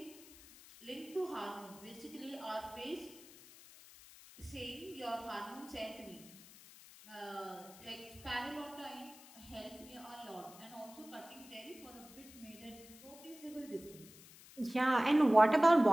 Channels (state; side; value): noise; left; hiss, 19 dB below the sound